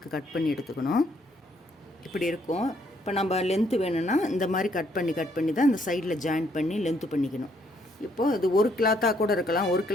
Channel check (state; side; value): normal; both; correlation 0.70